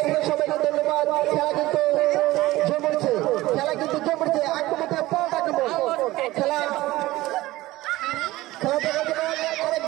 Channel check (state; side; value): quieter; left; 17.8 dB